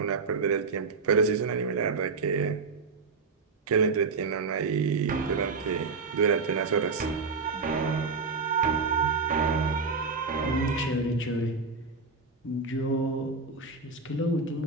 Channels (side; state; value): left; quieter; 4.5 dB